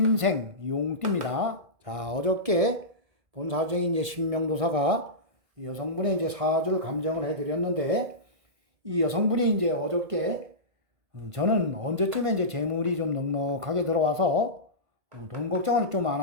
용띠입니다. 자, 어저께 본사주행이 이제 신명도사가 이 여성분의 이제 사주를 감정을 해드렸는데, 이 여성분이 이제 어저께 저는 언제쯤에 이제 재물이 좀 넉넉하게 들어와서 돈 걱정을 좀 안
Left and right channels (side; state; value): left; late; 2.0 ms